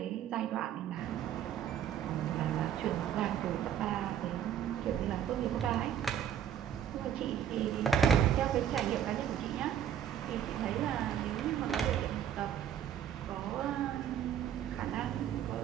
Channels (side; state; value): left; quieter; 9.6 dB